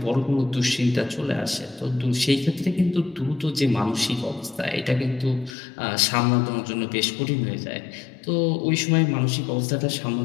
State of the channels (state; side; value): drops out; right; at 5.5 s